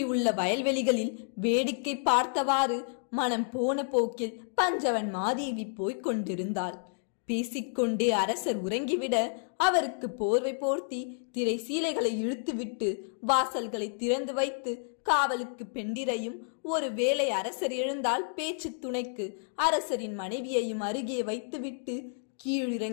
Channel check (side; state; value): right; silent; digital silence